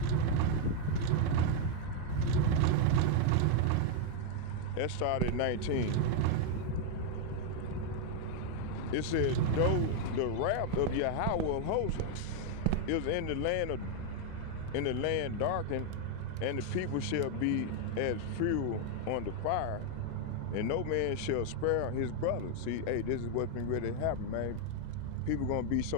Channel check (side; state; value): both; different; correlation 0.00